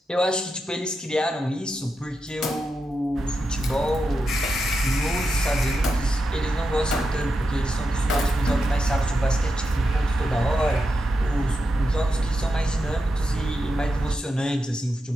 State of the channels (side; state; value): both; normal; correlation 0.87